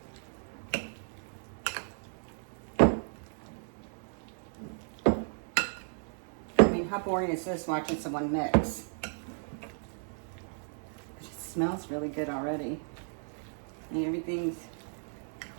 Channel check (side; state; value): left; silent; 55 dB below the other